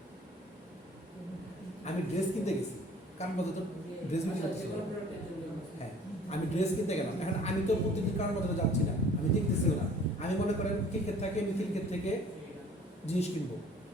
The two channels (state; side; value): normal; both; correlation 0.51